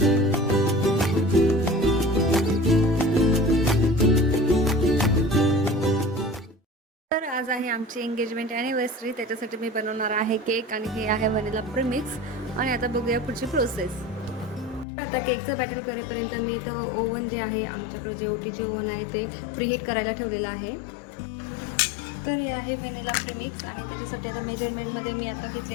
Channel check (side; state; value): right; drops out; at 14.9 s